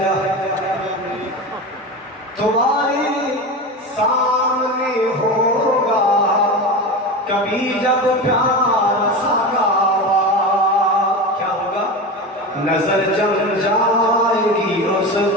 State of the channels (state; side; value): normal; both; correlation 0.25